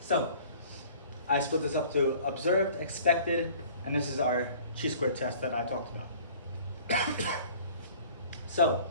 I split this up to observed, expected, and this is our chi-square test that I talked about. So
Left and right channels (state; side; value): inverted; both; correlation -0.50